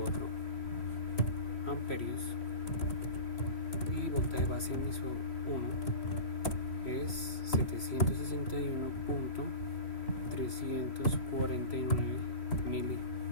amperios y voltaje base emisor 1 es 761.349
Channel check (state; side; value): late; right; 3.0 ms